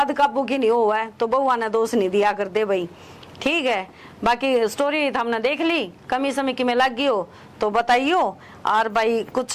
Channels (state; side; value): identical; both; correlation 1.00